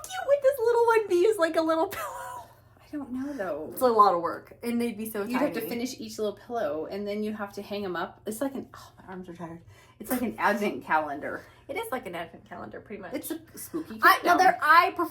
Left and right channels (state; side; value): identical; both; correlation 1.00